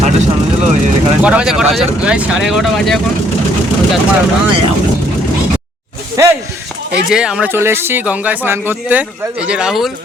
কটা বাজে? 11:30 বাজে এখন। এই যে আমরা চলে এসেছি গঙ্গায় স্নান করতে। এই যে রাহুল,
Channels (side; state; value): both; normal; correlation 0.66